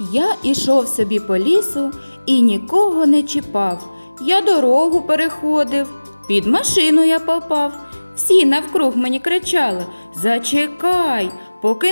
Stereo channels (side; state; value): both; inverted; correlation -1.00